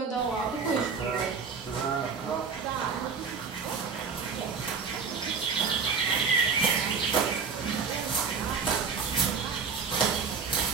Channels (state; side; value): quieter; left; 5.5 dB